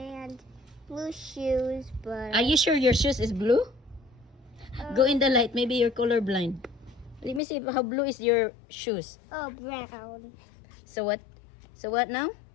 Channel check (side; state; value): right; drops out; at 7.4 s